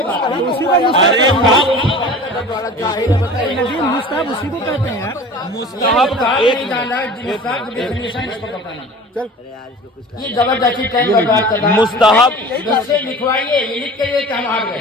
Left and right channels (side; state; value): both; normal; correlation 0.40